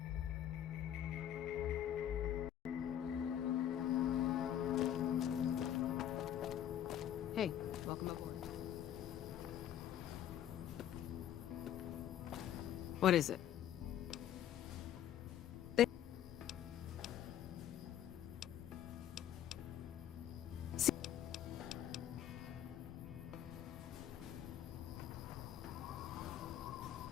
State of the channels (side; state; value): right; quieter; 10.8 dB